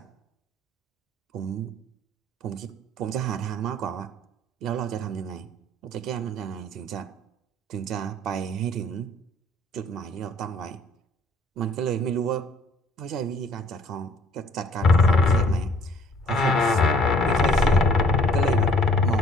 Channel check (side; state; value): both; normal; correlation 0.57